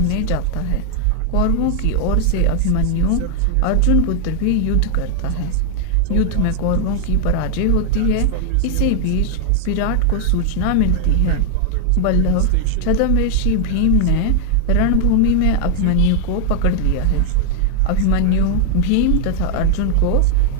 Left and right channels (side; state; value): both; different; correlation 0.00